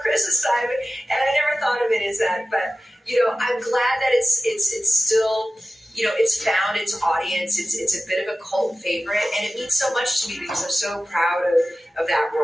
Christmas time," and I never thought of it as that. But I'm glad that it's still. It's found its audience. It's a bit of a cult favorite, and it means so much to me because I'm so proud of that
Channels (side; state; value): both; normal; correlation 0.95